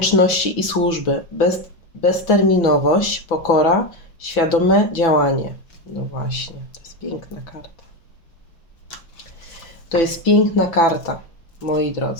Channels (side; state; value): right; late; 6.0 ms